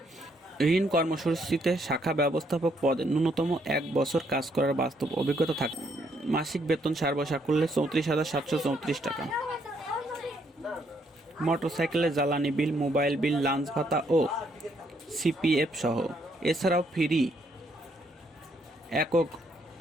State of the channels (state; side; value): normal; both; correlation 0.71